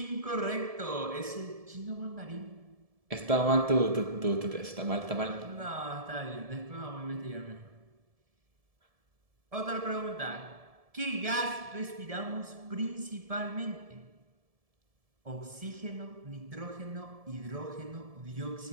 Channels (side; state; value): left; late; 1.7 ms